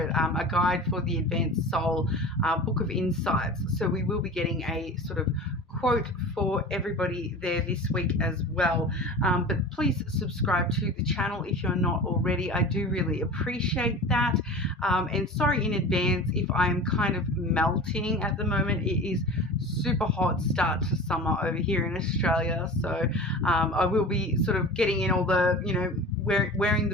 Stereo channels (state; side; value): normal; both; correlation 0.35